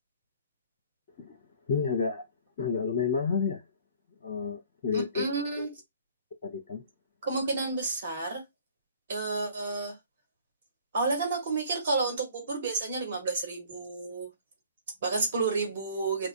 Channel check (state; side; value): inverted; both; correlation -0.52